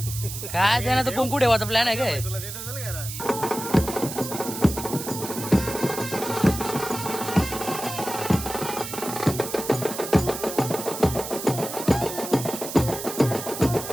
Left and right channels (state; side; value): noise; right; hiss, 8 dB below the sound